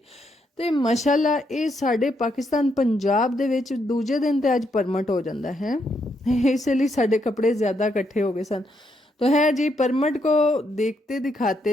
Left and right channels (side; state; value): both; normal; correlation 0.77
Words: तो माशाल्लाह ये साढ़े पाकिस्तान पंजाब दे विच दूजे दिन तो अज परमट हो जाता है, इसलिए साढ़े कपड़े ज़्यादा इकट्ठे हो गए सन। तो है जी परमट को देखते